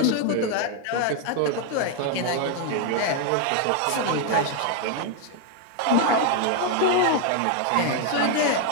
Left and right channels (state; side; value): different; both; correlation 0.00